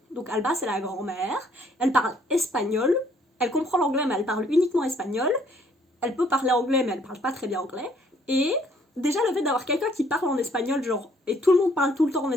Donc Alba, c'est la grand-mère, elle parle espagnol, elle comprend l'anglais, mais elle parle uniquement espagnol, elle peut parler anglais, mais elle parle pas très bien anglais, et déjà le fait d'avoir quelqu'un qui parle en espagnol, genre, et tout le monde parle tout le temps en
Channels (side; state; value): both; normal; correlation 0.64